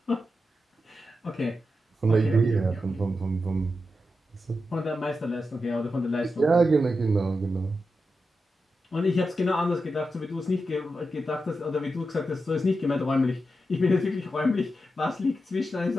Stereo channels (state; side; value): normal; both; correlation 0.89